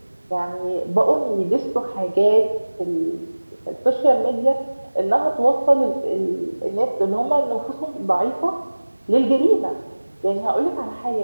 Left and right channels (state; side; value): inverted; both; correlation -1.00